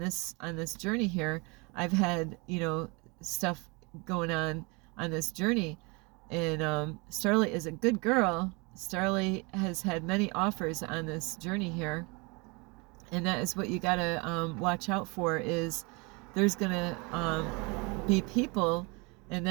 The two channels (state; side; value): quieter; left; 29.0 dB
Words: journey here, I've had, you know, stuff going on this journey. And Starlight is a good girl. Starlight has had many offers on this journey here, and that is what you gotta watch out for. Is there's gonna be people, and